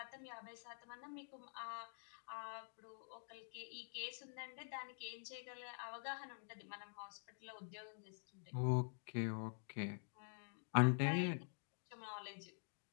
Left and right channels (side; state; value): right; silent; digital silence